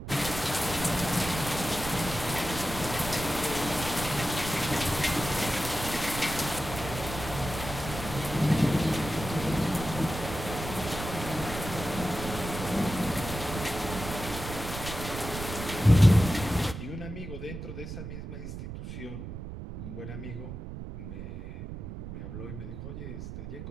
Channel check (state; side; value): noise; right; rumble, 8 dB below the sound